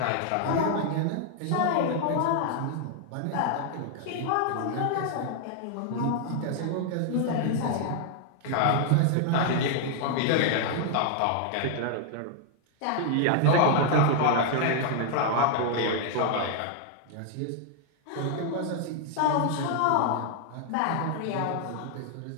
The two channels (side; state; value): both; different; correlation 0.00